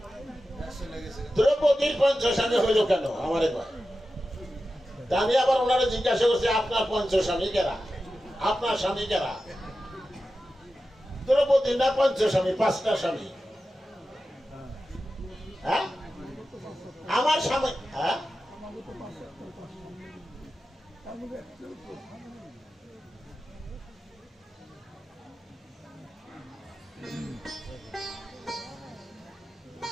দ্রৌপদীর পঞ্চস্বামী হইল কেন আমার এবার? তা আমি আবার ওনারা জিজ্ঞাসা করছি আপনার পঞ্চস্বামী কেরা, আপনার স্বামী কেরা? দ্রৌপদী না পঞ্চস্বামী, পাঁচটা স্বামী। হ্যাঁ আমার স্বামী, হ্যাঁ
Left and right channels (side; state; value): both; normal; correlation 0.93